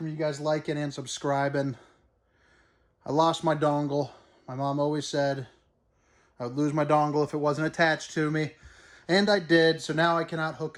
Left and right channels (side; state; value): both; identical; correlation 1.00